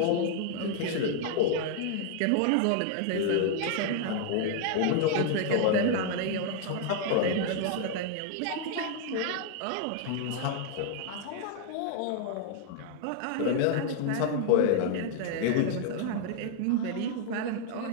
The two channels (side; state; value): both; different; correlation 0.00